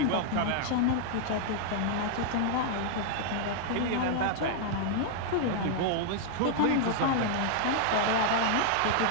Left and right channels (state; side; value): different; both; correlation -0.01